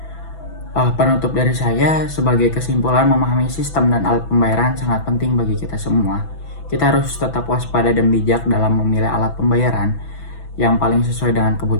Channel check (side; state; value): right; late; 6.0 ms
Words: Penutup dari saya, sebagai kesimpulan, memahami sistem dan alat pembayaran sangat penting bagi kita semua. Kita harus tetap waspada dan bijak dalam memilih alat pembayaran yang paling sesuai dengan